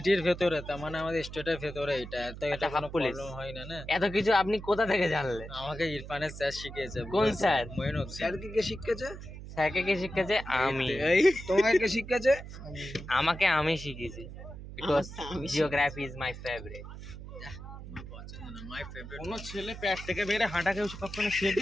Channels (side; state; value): right; noise; hum, 12 dB below the sound